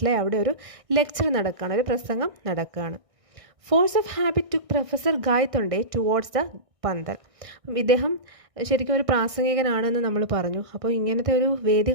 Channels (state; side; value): late; left; 1.6 ms